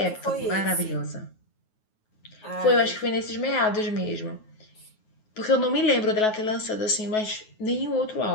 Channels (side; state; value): right; late; 9.3 ms